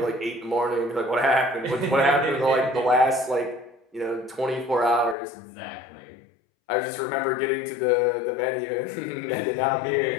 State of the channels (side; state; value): right; drops out; at 5.2 s